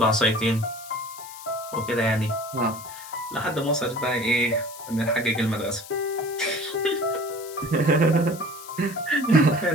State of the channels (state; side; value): noise; left; hiss, 16 dB below the sound